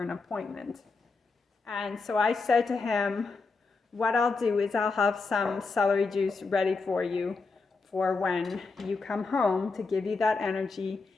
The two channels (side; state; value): right; quieter; 4.2 dB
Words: appointment. And so I said to him, what I'll do is I'll have some celery juice ready for you for when you come home to give you that energy.